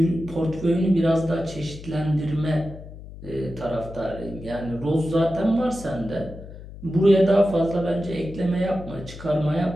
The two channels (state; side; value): noise; left; hum, 14 dB below the sound